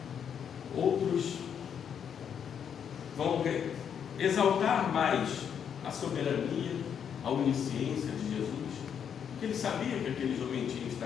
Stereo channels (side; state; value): right; quieter; 8.0 dB